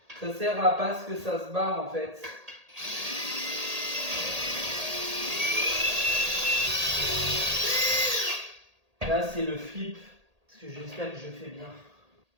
Ça sert à pas ce que ça se barre en fait. Là c'est le flip. Parce que j'espère que je fais bien.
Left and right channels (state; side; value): late; left; 1.8 ms